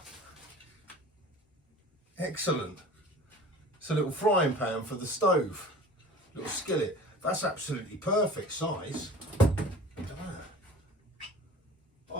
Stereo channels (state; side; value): normal; both; correlation 0.42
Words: Excellent. It's a little frying pan for the stove. Little skillet. That's absolutely perfect size.